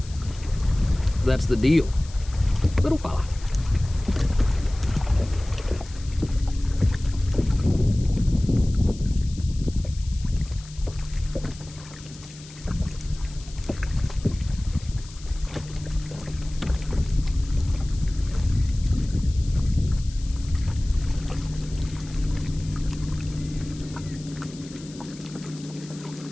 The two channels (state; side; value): noise; left; hiss, 19 dB below the sound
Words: That's the deal. Little fella.